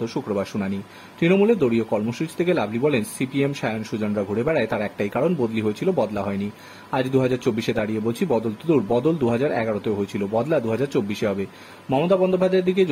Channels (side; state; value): both; identical; correlation 1.00